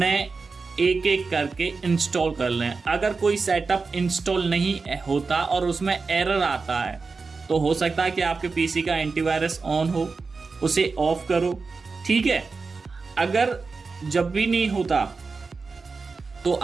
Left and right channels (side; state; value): left; quieter; 4.4 dB